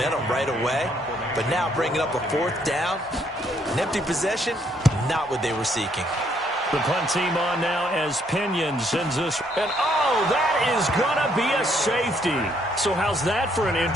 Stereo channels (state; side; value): normal; both; correlation 0.70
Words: right away. But now bringing up a 4th down, an empty possession, not what they were seeking. The punt team on now as Pinion sends this. And, oh, that is going to be a safety. So how's that for an